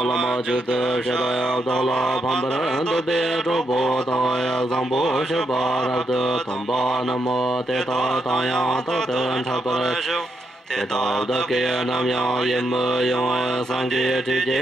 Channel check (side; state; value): both; normal; correlation 0.80